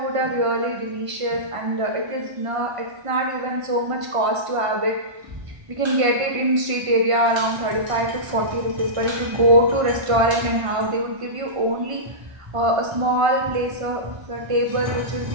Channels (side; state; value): left; late; 1.5 ms